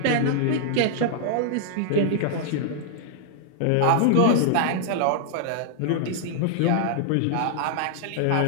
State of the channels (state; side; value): different; both; correlation -0.01